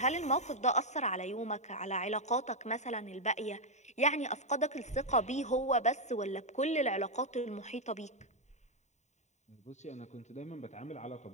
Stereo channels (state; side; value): late; right; 0.34 ms